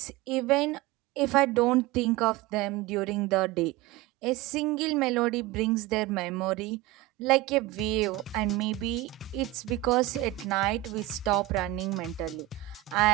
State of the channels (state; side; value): quieter; left; 16.7 dB